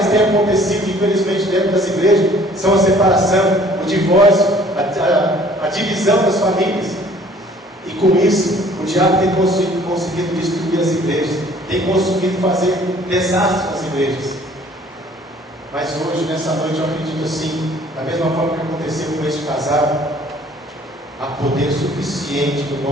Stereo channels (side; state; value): both; normal; correlation 0.55